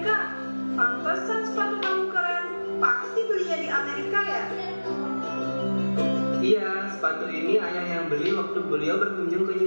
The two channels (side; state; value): both; inverted; correlation -1.00